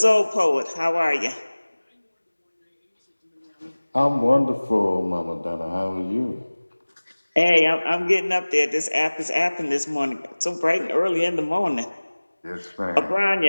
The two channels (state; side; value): inverted; both; correlation -1.00